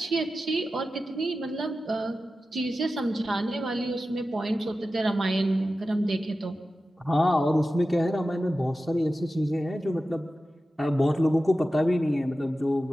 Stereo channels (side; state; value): both; normal; correlation 0.94